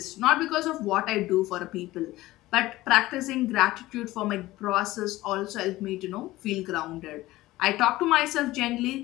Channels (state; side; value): quieter; right; 17.5 dB